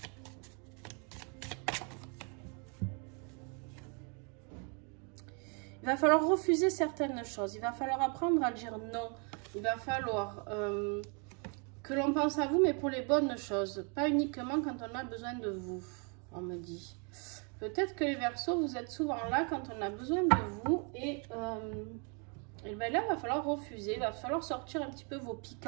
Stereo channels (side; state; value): left; quieter; 36.8 dB